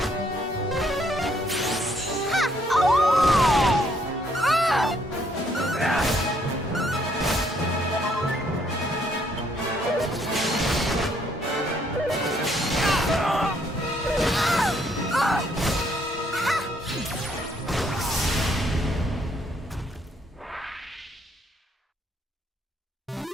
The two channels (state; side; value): normal; both; correlation 0.69